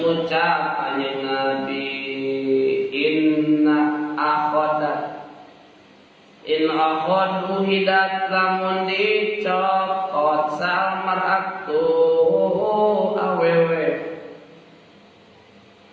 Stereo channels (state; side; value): identical; both; correlation 1.00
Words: kanjeng Nabi in akhadu hidat lamun dicokot salmaratu awewe